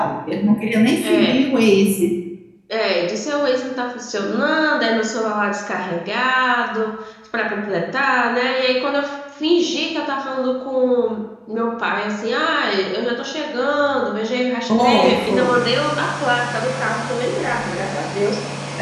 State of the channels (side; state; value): both; identical; correlation 1.00